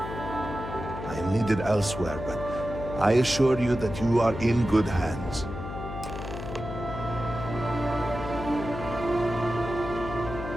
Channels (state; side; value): noise; left; hum, 8 dB below the sound